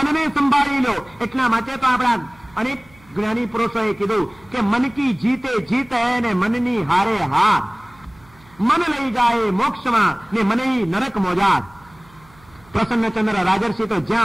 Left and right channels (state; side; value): noise; right; hum, 28 dB below the sound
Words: સંભાળી લો. એટલા માટે તો આપણા અનેક જ્ઞાની પુરુષોએ કીધું કે મન કી જીતે જીત હૈ ને મનની હારે હાર. મન લઈ જાય મોક્ષમાં ને મને નરક મોજાર. પ્રસન્નચંદ્ર રાજર્ષિ તો